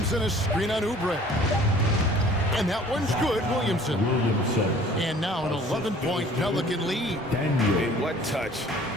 a screen on Oubre. And that one's good, Williamson. And now an 11-point Pelican lead. And what touch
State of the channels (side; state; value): both; normal; correlation 0.51